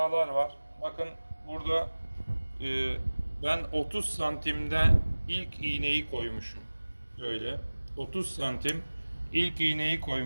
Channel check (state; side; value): inverted; both; correlation -1.00